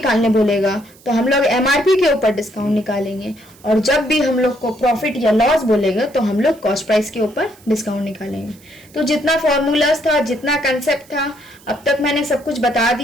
बोलेगा तो हम लोग एमआरपी के ऊपर डिस्काउंट निकालेंगे, और जब भी हम लोग को प्रॉफिट या लॉस बोलेगा तो हम लोग कॉस्ट प्राइस के ऊपर डिस्काउंट निकालेंगे। तो जितना फॉर्मूलाज था, जितना कंसेप्ट था, अब तक मैंने सब कुछ बता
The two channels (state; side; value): noise; right; hiss, 26 dB below the sound